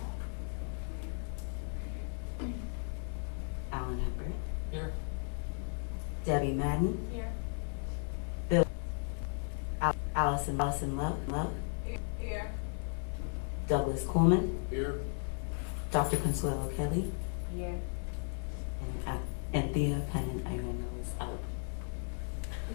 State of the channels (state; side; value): silent; right; 54 dB below the other